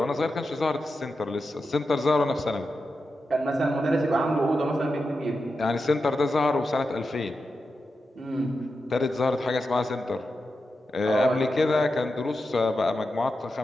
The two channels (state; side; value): normal; both; correlation 0.89